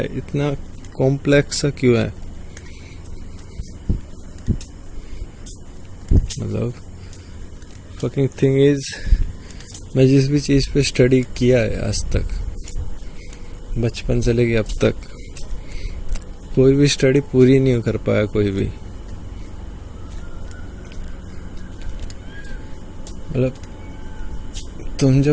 इतना कॉम्प्लेक्स सा क्यों है। मतलब फकिंग थिंग इज, मैं जिस भी चीज़ पे स्टडी किया है आज तक, बचपन से लेके अब तक, कोई भी स्टडी पूरी नहीं कर पाया कोई भी। मतलब तुम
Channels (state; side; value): identical; both; correlation 1.00